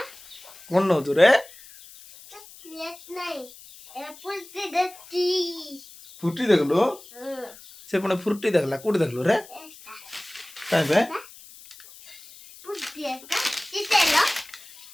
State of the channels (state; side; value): noise; left; hiss, 20 dB below the sound